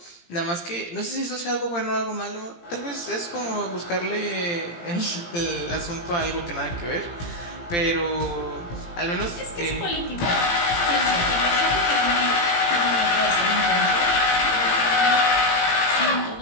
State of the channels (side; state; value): right; late; 17 ms